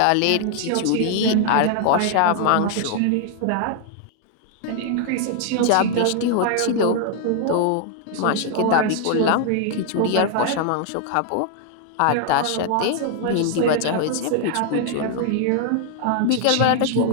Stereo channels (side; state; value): both; different; correlation 0.00